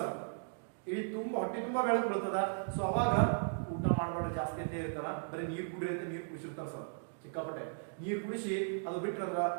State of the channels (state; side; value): silent; left; digital silence